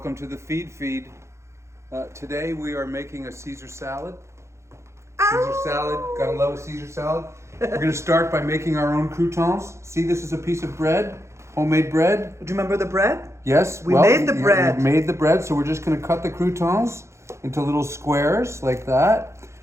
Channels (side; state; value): left; late; 0.14 ms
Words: to the feed. Today we are making a Caesar salad. Caesar salad, gotta love a Caesar salad. We're gonna start by making our own croutons. See, this is a piece of bread, homemade bread. Do you remember the bread? Yes, We made the bread. We made the bread, so we're just gonna cut the croutons into little squares like that.